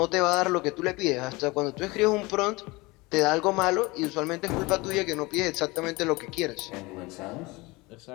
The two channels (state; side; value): quieter; right; 23.4 dB